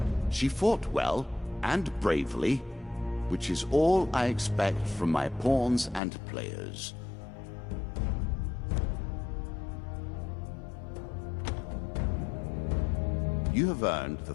she fought well and bravely, which is all I expect from my pawns and players. You have earned the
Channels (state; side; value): drops out; right; at 6.0 s